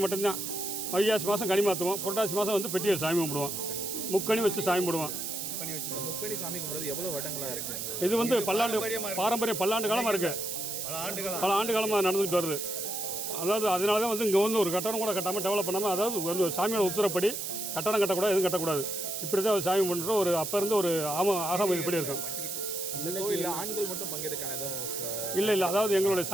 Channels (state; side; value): noise; right; hiss, 4 dB below the sound